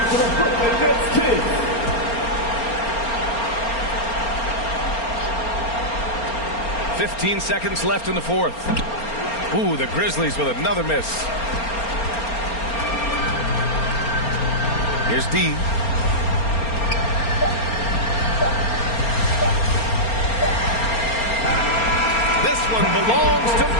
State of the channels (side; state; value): right; late; 4.3 ms